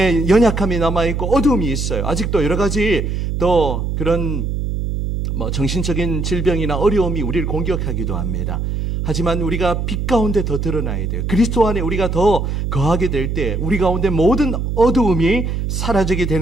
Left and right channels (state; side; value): noise; right; hum, 2 dB below the sound